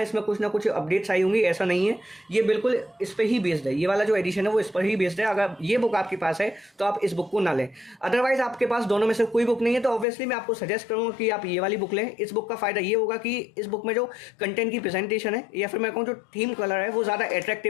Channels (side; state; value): right; drops out; at 10.1 s